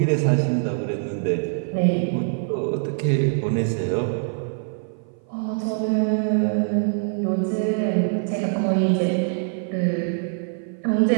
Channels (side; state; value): left; silent; 56 dB below the other